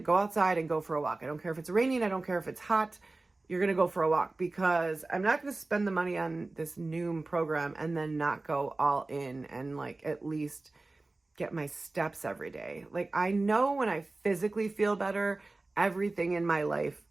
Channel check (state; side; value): quieter; left; 3.2 dB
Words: outside and go for a walk. I don't care if it's raining. I don't care if it's hot. You're going to go for a walk, because I'm not going to spend the money on this Noom program and then not go all in and like at least get my steps every day. Like, I know when I physically feel better, everything in my life